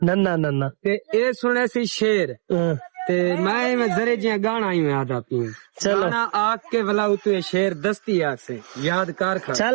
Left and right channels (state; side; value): silent; left; digital silence